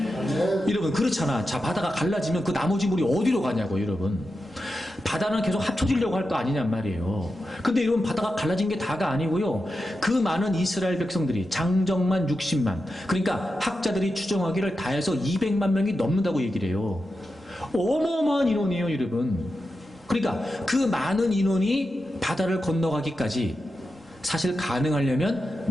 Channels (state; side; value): normal; both; correlation 0.90